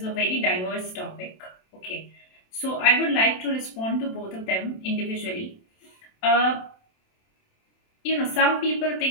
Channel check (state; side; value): late; right; 27 ms